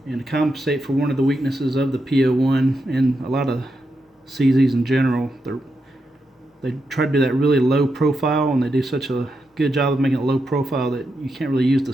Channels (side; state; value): both; normal; correlation 0.85